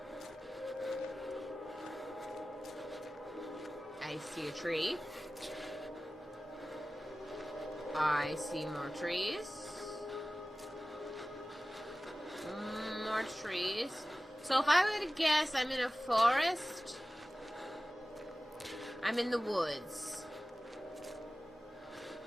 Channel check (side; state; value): both; normal; correlation 0.96